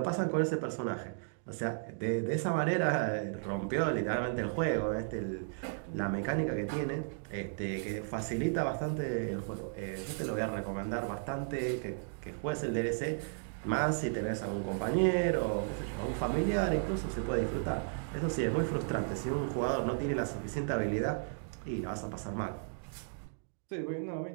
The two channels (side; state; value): left; silent; digital silence